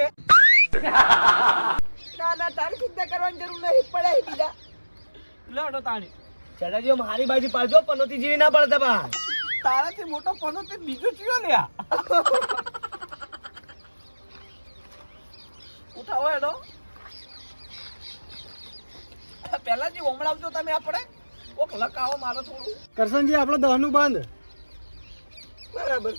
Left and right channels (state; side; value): inverted; both; correlation -1.00